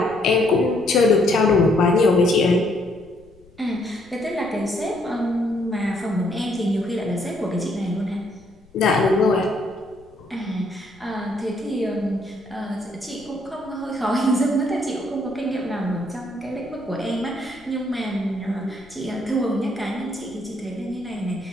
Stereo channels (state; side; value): noise; left; rumble, 27 dB below the sound